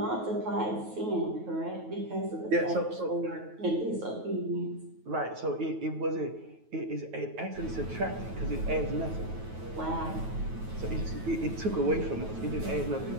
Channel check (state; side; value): late; left; 9.2 ms